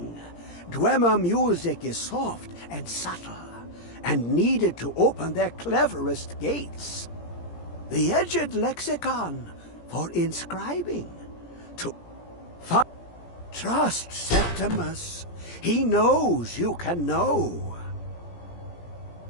Dwemer music is soft and subtle, and needed to open their cleverest gates. The edged lexicon for inscribing. Trust Septimus. He knows you can know.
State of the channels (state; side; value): late; right; 17 ms